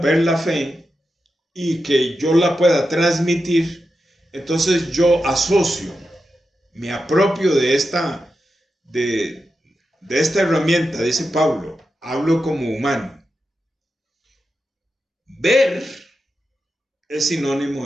la fe y que yo la pueda transmitir, entonces yo asocio, me apropio de de esta herramienta, dice Pablo, hablo como humano. Ver es sinónimo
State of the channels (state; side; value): normal; both; correlation 0.89